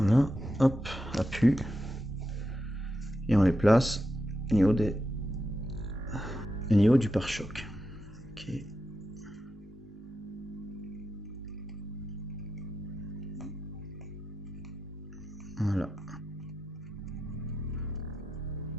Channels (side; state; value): both; normal; correlation 0.88